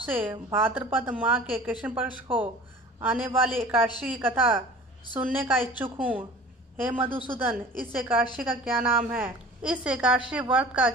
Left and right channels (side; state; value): both; normal; correlation 0.43